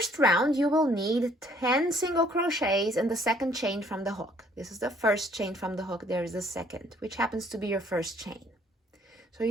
round, you will need 10 single crochets in the second chain from the hook. This is the first chain from the hook. There is the second, which happens to be your first chain. So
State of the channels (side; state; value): both; normal; correlation 0.62